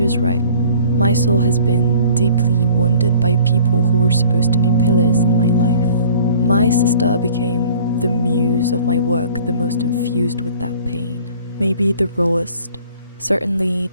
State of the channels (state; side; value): inverted; both; correlation -0.52